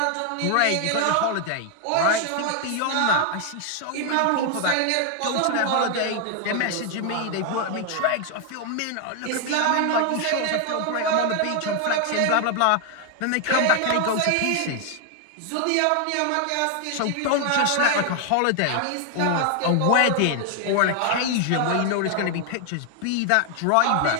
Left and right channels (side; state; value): both; different; correlation 0.00